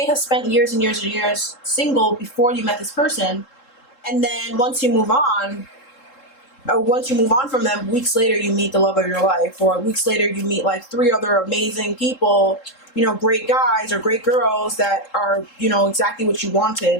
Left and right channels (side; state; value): right; late; 3.7 ms